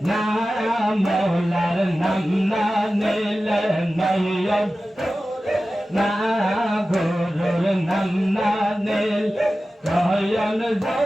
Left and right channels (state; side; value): normal; both; correlation 0.95